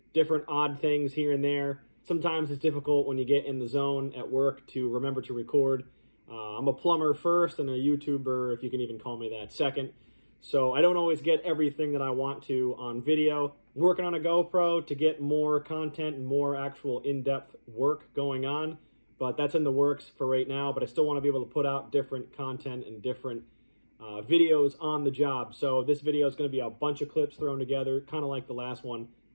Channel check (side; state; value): both; inverted; correlation -1.00